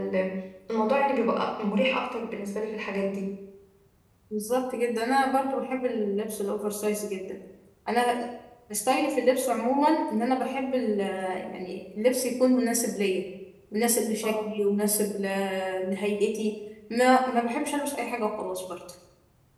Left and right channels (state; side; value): identical; both; correlation 1.00